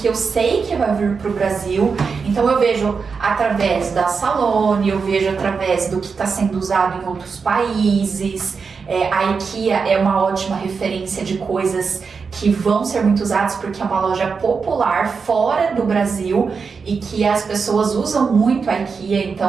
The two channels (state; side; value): quieter; left; 5.3 dB